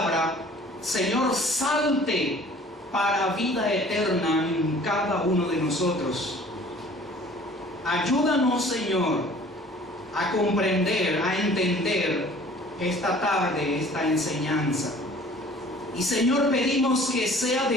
Señor, salte para vida eterna en cada uno de nosotros. Ayúdanos, Señor, a comprender, a entender esta tarde, esta enseñanza. Y, Señor, pedimos que sea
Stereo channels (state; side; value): normal; both; correlation 0.50